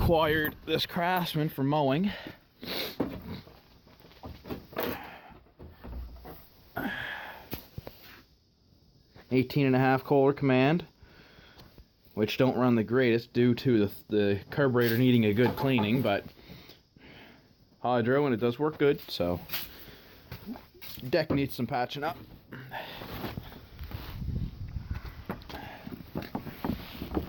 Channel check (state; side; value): identical; both; correlation 1.00